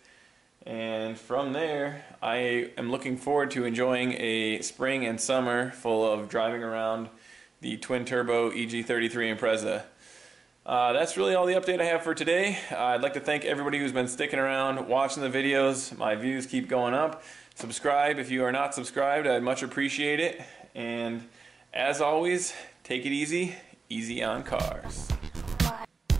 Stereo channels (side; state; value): left; quieter; 4.4 dB